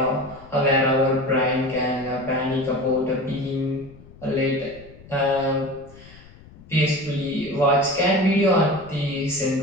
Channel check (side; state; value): left; noise; rumble, 21 dB below the sound